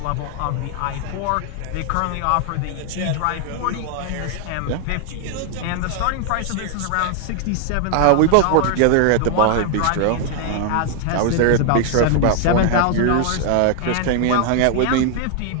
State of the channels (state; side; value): different; both; correlation 0.00